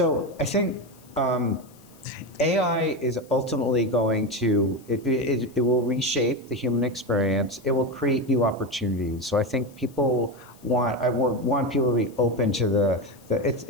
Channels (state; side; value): noise; left; hiss, 27 dB below the sound